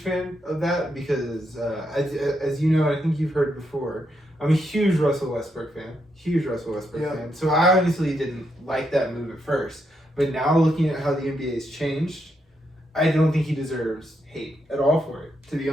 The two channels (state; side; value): normal; both; correlation 0.80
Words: of that because as you know, I think you've heard before, I'm a huge Russell Westbrook fan. Fan. So I honestly didn't like that move at first. But now looking at how the NBA has changed, I don't think he deserves hate at all for it, to be